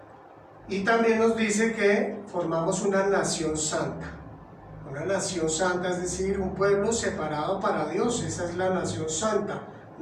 Y también nos dice que formamos una nación santa. Una nación santa, es decir, un pueblo separado para Dios. Esa es la nación santa.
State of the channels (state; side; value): identical; both; correlation 1.00